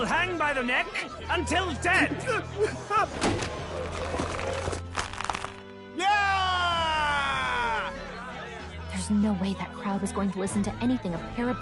hang by the neck until dead! Yeah! There's no way that crowd was going to listen to anything a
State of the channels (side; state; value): both; identical; correlation 1.00